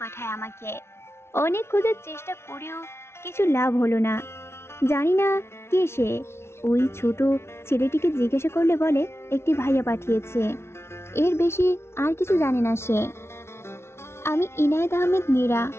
পাঠায় আমাকে। অনেক খোঁজার চেষ্টা করেও কিছু লাভ হলো না। জানি না কে সে। ওই ছোট ছেলেটিকে জিজ্ঞাসা করলে বলে একটি ভাইয়া পাঠিয়েছে, এর বেশি আর কিছু জানে না সে। আমি ইনায়েত আহমেদ নীরা,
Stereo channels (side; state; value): right; late; 0.12 ms